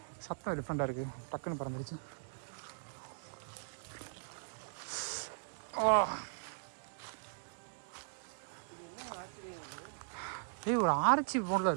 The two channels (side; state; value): left; silent; digital silence